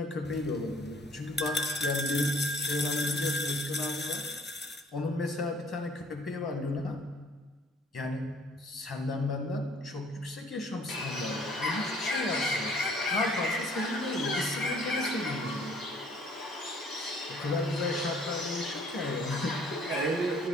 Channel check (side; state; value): both; normal; correlation 0.56